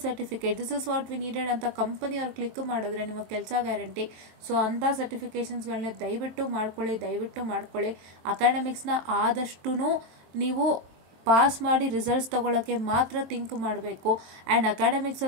certificate. This is what we needed ಅಂತ company ಅವ್ರು click ಮಾಡಿದ್ರೆ ನಿಮ್ಮ ಕೆಲಸ ಗ್ಯಾರಂಟಿ. ಸೊ ಅಂಥ ಸರ್ಟಿಫಿಕೇಷನ್ಸ್ಗಳನ್ನ ದಯವಿಟ್ಟು ಮಾಡ್ಕೊಳ್ಳಿ. ಅಕಾಡೆಮಿಕ್ಸ್ನ ಆದಷ್ಟು ನೀವು ಪಾಸ್ ಮಾಡಿ ರಿಸಲ್ಟ್ಸ್ ತಗೊಳ್ಳೋಕ್ಕೆ ಮಾತ್ರ ಥಿಂಕ್ ಮಾಡಬೇಕು. ಆ್ಯಂಡ್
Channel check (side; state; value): left; late; 22 ms